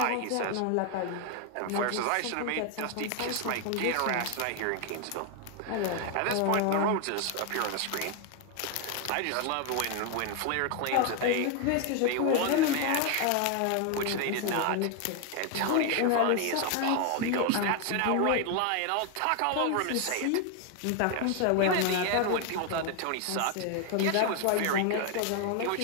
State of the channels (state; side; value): different; both; correlation 0.01